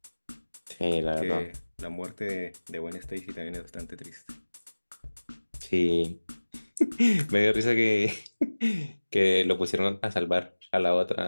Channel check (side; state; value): both; inverted; correlation -1.00